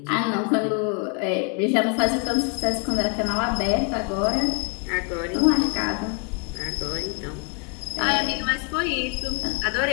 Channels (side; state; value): right; quieter; 33.4 dB